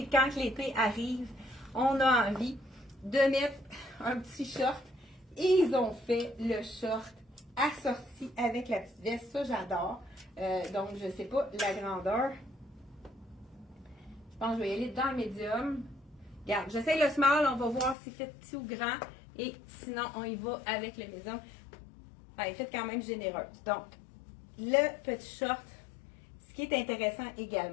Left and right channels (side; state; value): right; drops out; at 17.9 s